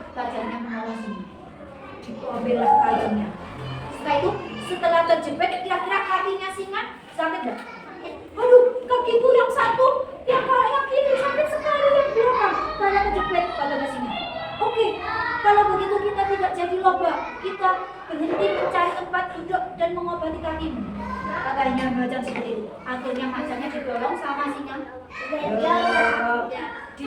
macannya menolong singa. Diambillah kayunya. Setelah itu, setelah terjepit, kira-kira kakinya singa sakit nggak? Aduh, kakiku yang satu, yang kiri sakit sekali, yang belakang karena terjepit pada singa. Oke, kalau begitu kita tidak jadi lomba. Kita berhenti mencari tempat duduk dan mengobati kakimu. Katanya macan seperti itu. Akhirnya macannya didorong sama singa.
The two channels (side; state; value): both; identical; correlation 1.00